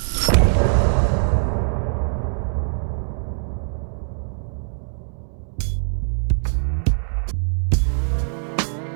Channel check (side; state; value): left; silent; digital silence